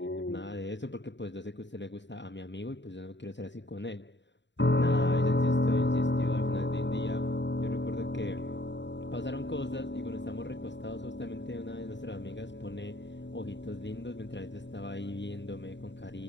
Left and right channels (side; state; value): right; late; 0.52 ms